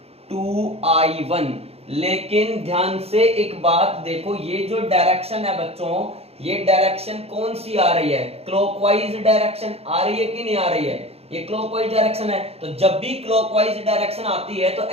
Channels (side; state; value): left; late; 0.29 ms